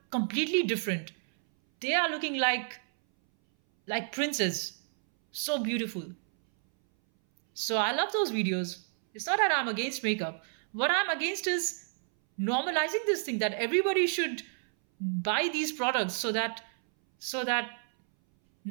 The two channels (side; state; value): left; silent; 58 dB below the other